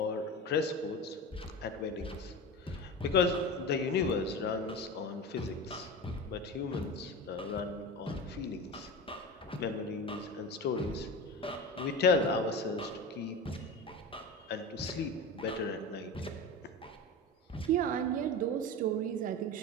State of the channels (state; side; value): normal; both; correlation 0.27